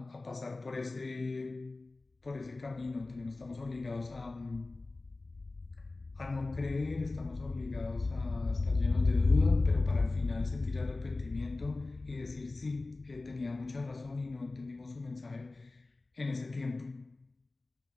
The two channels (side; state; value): right; quieter; 3.3 dB